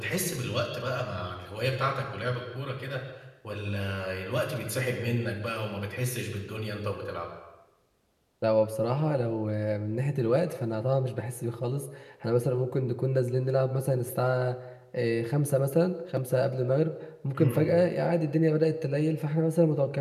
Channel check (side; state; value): both; identical; correlation 1.00